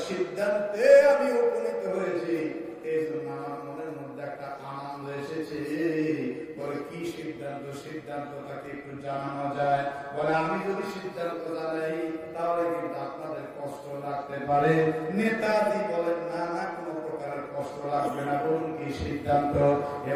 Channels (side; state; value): both; identical; correlation 1.00